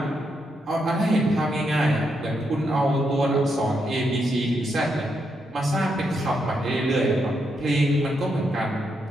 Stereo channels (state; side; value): normal; both; correlation 0.81